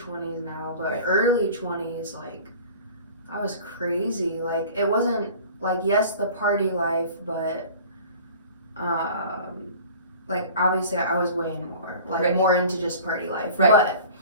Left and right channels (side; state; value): both; inverted; correlation -0.43